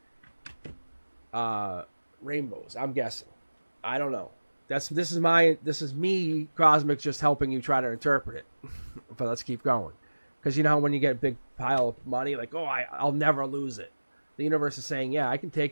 rainbows. I'm guessing. I don't know. This is me, Cosmic, just helping you try to interpret it. But let's keep going. Because you know how when you get a big pile of money, like, oh, I'll never lose it. The universe is saying, yeah, I can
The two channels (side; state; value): both; inverted; correlation -1.00